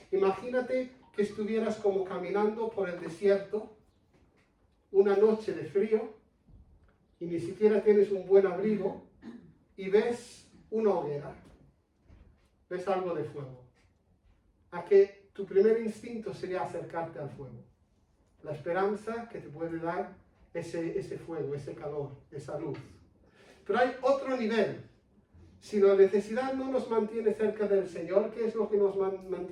Imagínate que estuvieras como caminando por el desierto, una noche de frío, y ni siquiera tienes un buen abrigo, y ves una hoguera. Ves algo de fuego. a que tu primer instinto sería acercarte al fuego. La esperanza que te puede dar ese fuego, ese calor, esa luz. Pero hay otro nivel. Si la necesidad no nos mantiene cerca del Señor, ¿qué es lo que nos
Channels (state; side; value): identical; both; correlation 1.00